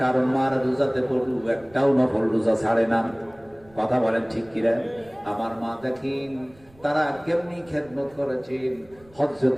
কারণ মারা রোজাতে পড়ু একটাও নফল রোজা ছাড়ে না। কথা বলেন ঠিক কিনা? আমার মা দেখেন তারা কেমনি খেদমত করেছেন।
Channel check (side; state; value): right; noise; rumble, 27 dB below the sound